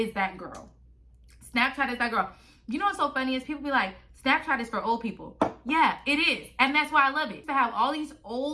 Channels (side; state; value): both; identical; correlation 1.00